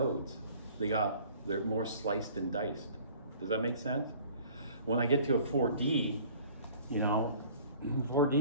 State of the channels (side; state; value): both; inverted; correlation -0.50